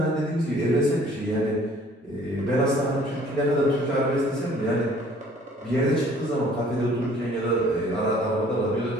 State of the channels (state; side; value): normal; both; correlation 0.55